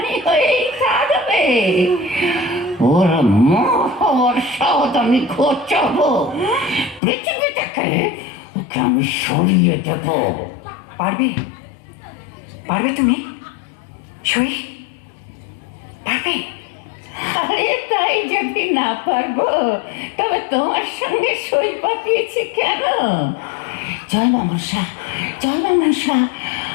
হয়েই থাকবে। ওর মোহর সদ আমি ঘোচাবো, পৃথিবী থেকে ওকে আমি সরিয়ে দেব। পারবে তুমি সই? পারবে? আরে তাই যদি না পারবো তবে তোমার সঙ্গে সই পাঠিয়েছি কেন? জয় মনসা,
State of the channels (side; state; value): right; drops out; at 7.0 s